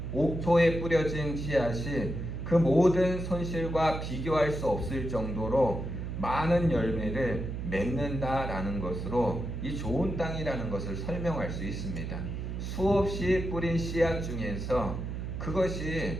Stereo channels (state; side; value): noise; right; hum, 5 dB below the sound